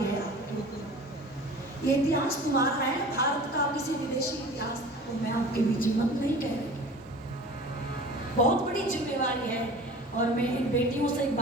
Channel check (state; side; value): normal; both; correlation 0.41